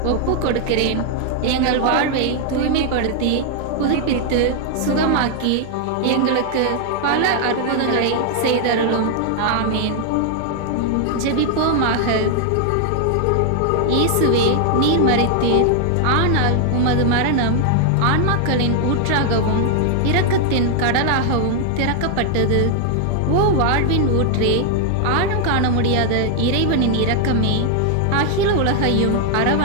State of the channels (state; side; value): different; both; correlation 0.00